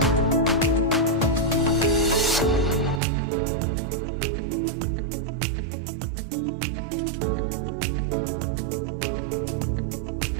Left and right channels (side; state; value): left; drops out; at 3.0 s